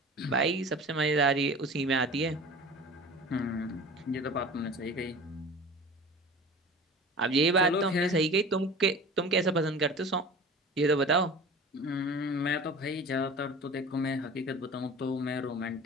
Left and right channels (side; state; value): both; normal; correlation 0.38